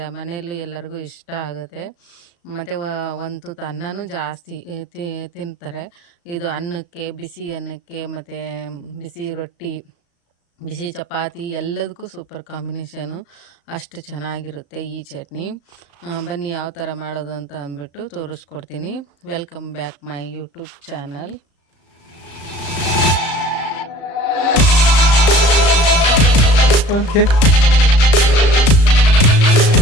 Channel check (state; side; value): late; right; 35 ms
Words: ಮನೆಯಲ್ಲೂ ಎಲ್ಲರಿಗೂ ಇಷ್ಟ ಆಗುತ್ತೆ. ಮತ್ತು ಒಂದು ತುತ್ತು ಅನ್ನನೂ ಜಾಸ್ತಿ ತಿಂತಾರೆ. ಇದು ಅನ್ನಕ್ಕೆ, ಬಿಸಿ ಅನ್ನಕ್ಕೆ, ಮತ್ತು ಬಿಸಿ ರೊಟ್ಟಿ, ಬಿಸಿ ಚಪಾತಿ ಎಲ್ಲದಕ್ಕೂ ಸೂಪರ್ ಕಾಂಬಿನೇಷನು. ಅಷ್ಟು ಚೆನ್ನಾಗಿರುತ್ತೆ ಈ ಚಟ್ನಿ. ಬನ್ನಿ ಯಾವ ಥರ ಮಾಡೋದು ಅಂತ ಅಂದ್ಬಿಟ್ಟು ತೋರಿಸ್ಕೊಡ್ತೀನಿ. Welcome back my YouTube channel.